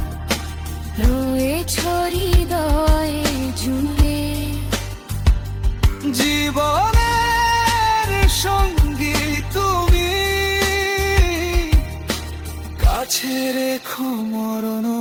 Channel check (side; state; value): both; identical; correlation 1.00